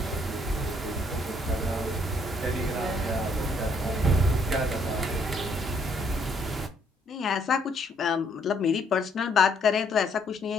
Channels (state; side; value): normal; both; correlation 0.67